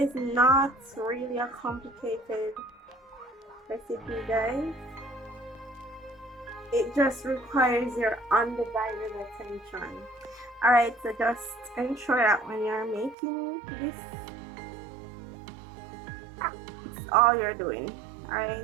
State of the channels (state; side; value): drops out; left; at 13.2 s